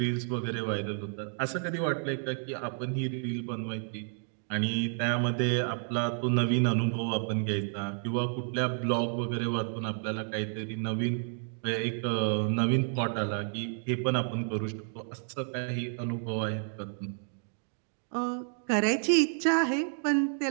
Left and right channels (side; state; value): left; silent; 57 dB below the other